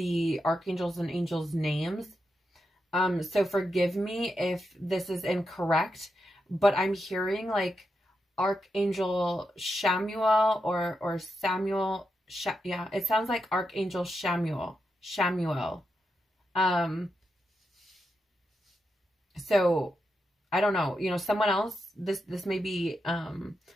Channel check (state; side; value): normal; both; correlation 0.86